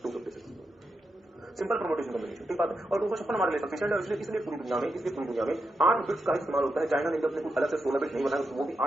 256। सिंपल परम्यूटेशन कॉम्बिनेशन, ठीक बात है। और 256 हमारे लिए सफिशिएंट है। इसलिए पूरी दुनिया में 8 बिट्स का इस्तेमाल होता है। चाइना ने अपने कुछ अलग से 16 बिट नहीं बनाया, वो भी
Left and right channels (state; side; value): normal; both; correlation 0.86